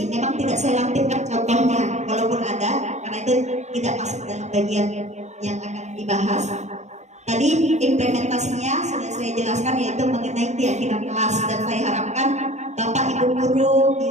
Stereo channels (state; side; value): late; left; 0.33 ms